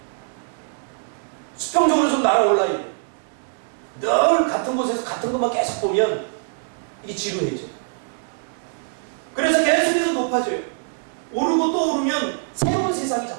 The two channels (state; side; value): silent; left; 63 dB below the other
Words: 수평적으로 좀 날아올라야 돼요. 늘 같은 곳에서 같은 것만 계속 보면 이게 지루해져. 그래서 계속해서 높아져요. 오르고 또 오르면 새로운 세상이